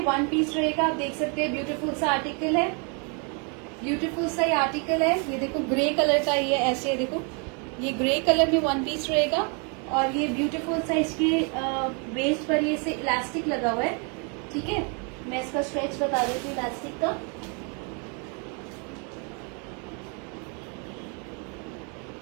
वन पीस रहेगा। आप देख सकते हैं ब्यूटीफुल सा आर्टिकल है, ब्यूटीफुल सा ये आर्टिकल है। ये देखो ग्रे कलर का, ये ऐसे देखो, ये ग्रे कलर में वन पीस रहेगा। और ये ब्यूटीफुल सा इसके वेस्ट पर ये से इलास्टिक लगा हुआ है, ठीक है। मैं इसका स्ट्रेच बता देती हूँ इलास्टिक का।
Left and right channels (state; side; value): quieter; left; 36.6 dB